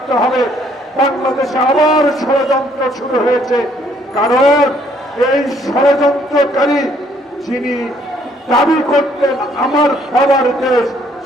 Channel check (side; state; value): both; normal; correlation 0.65